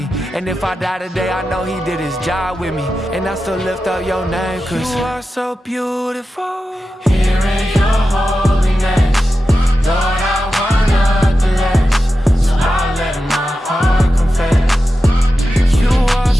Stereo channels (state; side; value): normal; both; correlation 0.91